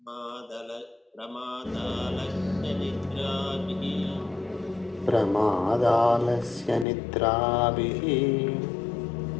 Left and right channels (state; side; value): drops out; right; at 6.9 s